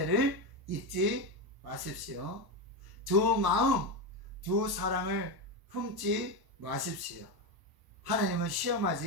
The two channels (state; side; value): late; left; 1.1 ms